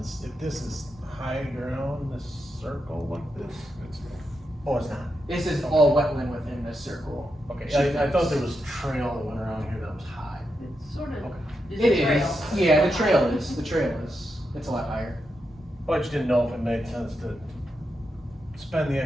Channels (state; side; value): normal; both; correlation 0.85